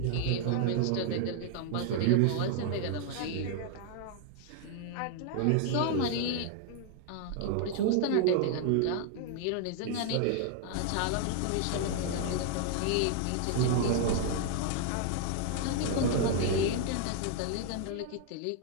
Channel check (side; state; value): both; different; correlation 0.00